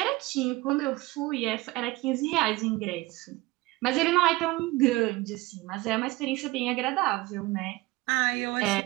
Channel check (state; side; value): quieter; left; 20.6 dB